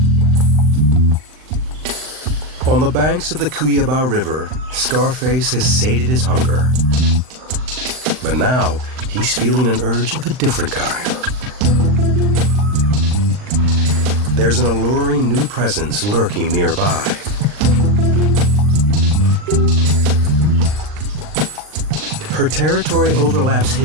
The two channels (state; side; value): late; left; 39 ms